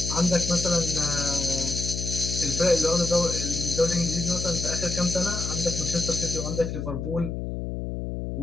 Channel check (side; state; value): left; noise; hum, 4 dB below the sound